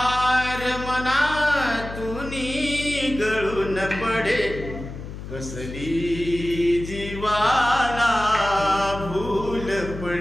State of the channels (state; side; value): noise; left; hum, 10 dB below the sound